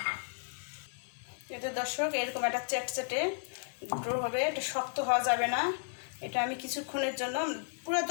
এতে দর্শক এরকম একটা চ্যাটচ্যাটে ড্রো হবে, এটা শক্ত হওয়া যাবে না। এটা আমি কিছুক্ষণের জন্য, পুরো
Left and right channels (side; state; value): right; silent; digital silence